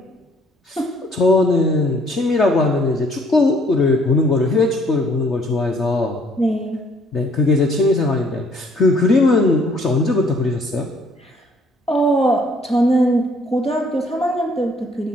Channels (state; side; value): normal; both; correlation 0.62